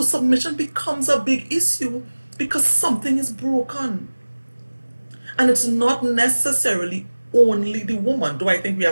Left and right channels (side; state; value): both; inverted; correlation -1.00